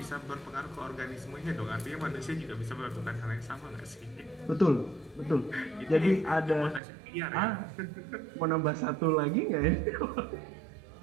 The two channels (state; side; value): drops out; left; at 6.8 s